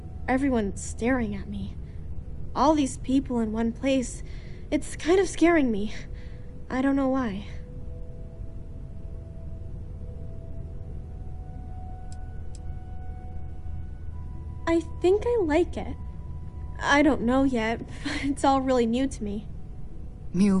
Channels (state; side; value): identical; both; correlation 1.00